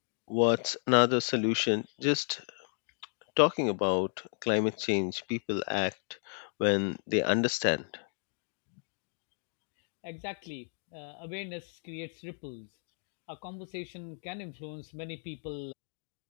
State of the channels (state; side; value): silent; right; 56 dB below the other